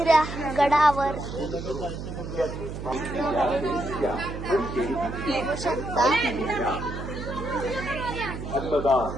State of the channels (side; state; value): right; noise; hum, 7 dB below the sound